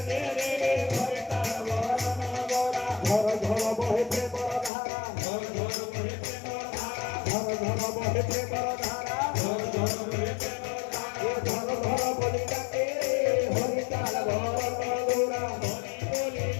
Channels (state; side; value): drops out; right; at 4.7 s